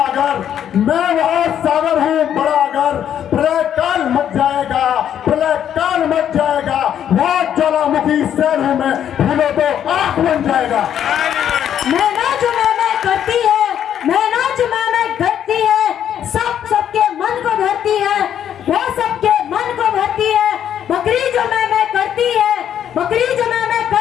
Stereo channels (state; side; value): quieter; right; 9.7 dB